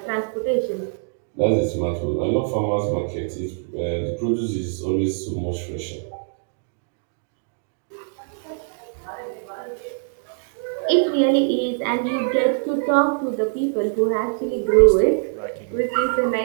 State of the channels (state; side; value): silent; left; digital silence